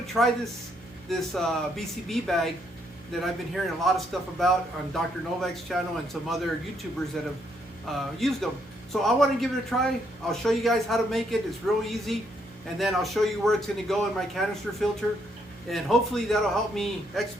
to try this BCB bag that I've been hearing a lot of stuff about on Dr. Novak's channel and some other YouTubers that have used them. So I want to give it a try. I'll show you guys how to make it. It's real easy. And then I'll show you where it's going to go in my canister filter. And hopefully that'll help me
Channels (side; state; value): both; normal; correlation 0.73